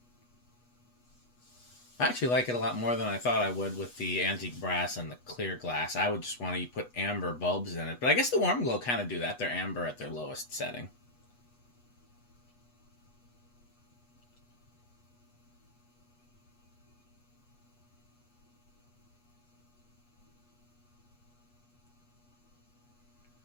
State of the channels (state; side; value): late; right; 8.2 ms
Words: I actually like it a lot more than I thought I would with the antique brass and the clear glass. I would just want to put amber bulbs in it. But I guess the warm glow kind of do that. They're amber at their lowest setting.